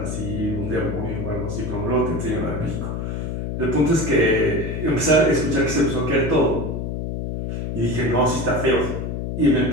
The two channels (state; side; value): noise; left; hum, 4 dB below the sound